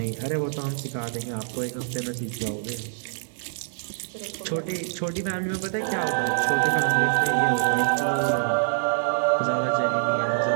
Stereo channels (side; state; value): left; silent; digital silence